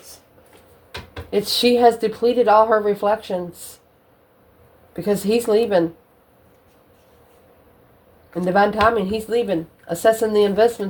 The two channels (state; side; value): identical; both; correlation 1.00